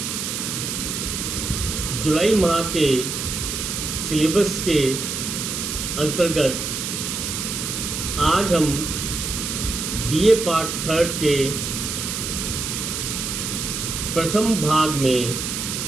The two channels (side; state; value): right; noise; hiss, 3 dB below the sound